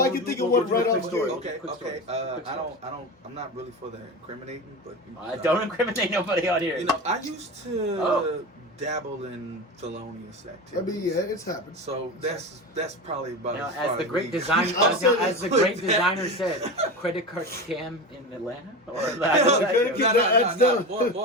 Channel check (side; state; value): both; normal; correlation 0.25